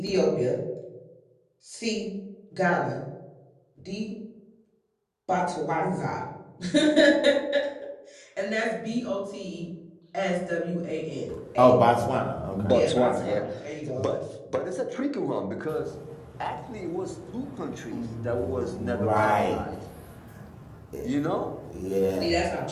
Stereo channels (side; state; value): both; identical; correlation 1.00